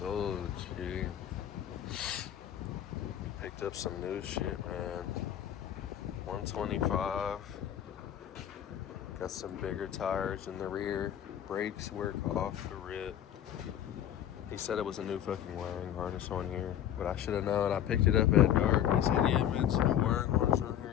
gee. Picked up some new shit, man. 125. Got some bigger tires in the rear. Brakes work off the rip. He said it was a new fucking wiring harness on here, but I should have known. I picked it up at dark. He said, yeah, man, it's a new wiring harness on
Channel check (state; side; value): quieter; right; 10.6 dB